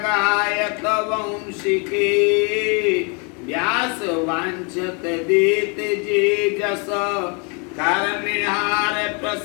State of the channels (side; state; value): right; quieter; 34.5 dB